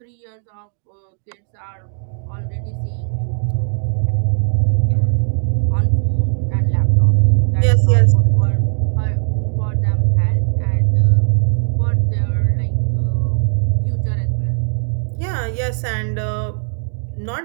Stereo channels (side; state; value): left; silent; digital silence